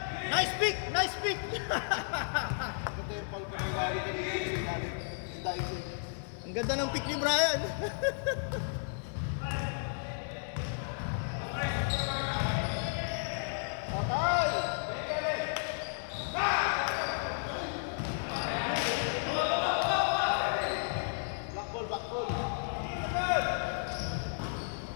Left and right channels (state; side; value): silent; right; 56 dB below the other